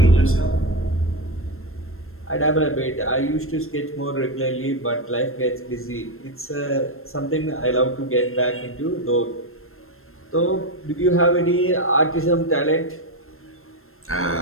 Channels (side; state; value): right; late; 0.62 ms